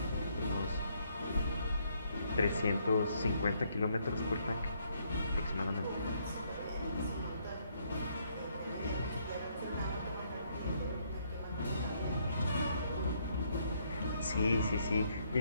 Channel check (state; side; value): inverted; both; correlation -0.71